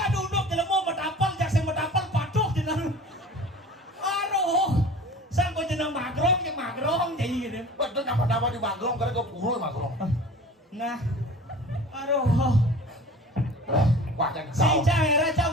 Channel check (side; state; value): both; normal; correlation 0.42